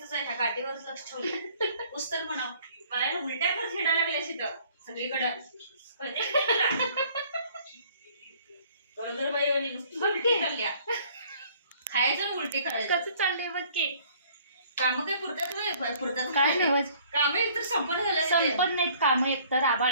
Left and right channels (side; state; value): both; inverted; correlation -0.57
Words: आहे, ह्या गाठीवरच लक्ष ठेवलं. पुस्तक म्हणाव पायाला उलट्या कर खेळा लागल्या तिथं सगळीकडं. गरोदर बाई आणि नुसती चालल्या खायचं उलटी करायचं. कसं चाललंय बघ की. काम काय पुरतात काय नाही काम एकतर संपन्न झालं. संपन्न नाहीत काम. एकतर